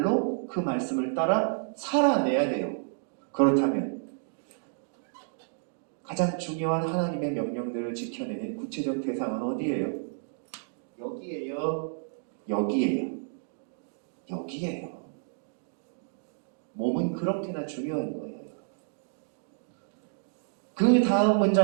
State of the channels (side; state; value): left; silent; digital silence